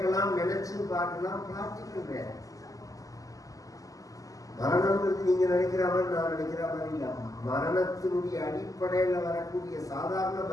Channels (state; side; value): late; right; 0.17 ms